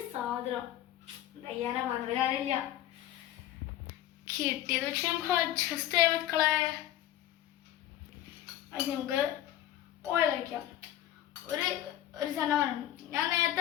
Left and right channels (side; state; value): right; quieter; 12.9 dB